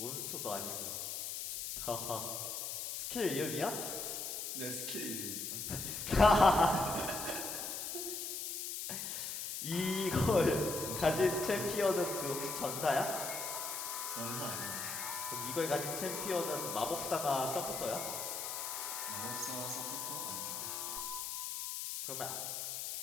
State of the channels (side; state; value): left; noise; hiss, 4 dB below the sound